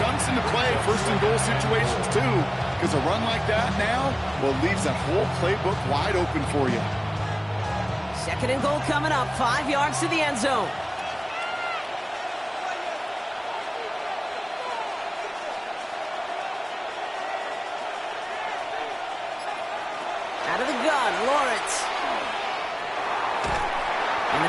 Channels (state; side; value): identical; both; correlation 1.00